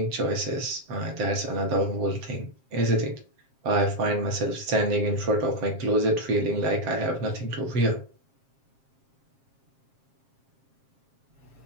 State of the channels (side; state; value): left; late; 7.5 ms